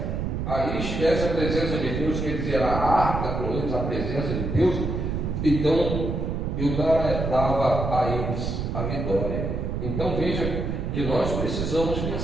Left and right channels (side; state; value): right; noise; rumble, 2 dB below the sound